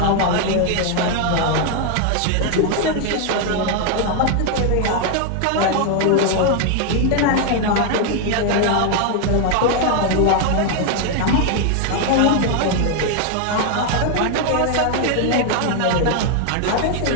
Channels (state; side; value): different; both; correlation 0.01